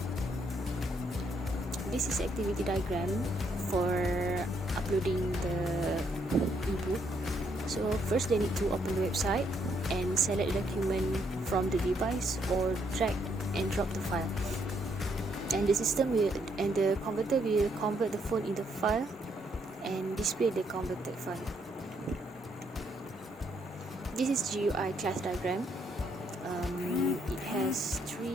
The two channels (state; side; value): normal; both; correlation 0.73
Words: This is activity diagram for uploading the ebook. So first they need to open the website and select the document from the device or drag and drop the file. And the converter will convert the font into file and display the converted file. This is GUI class diagram. It has